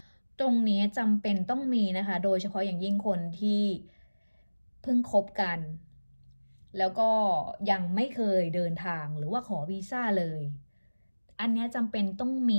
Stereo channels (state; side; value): inverted; both; correlation -1.00